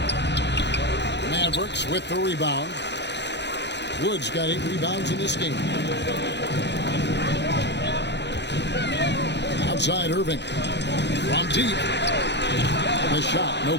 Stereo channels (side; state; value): right; late; 0.50 ms